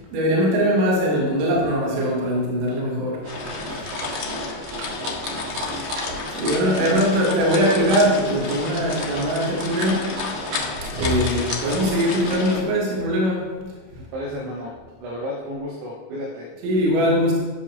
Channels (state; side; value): late; left; 26 ms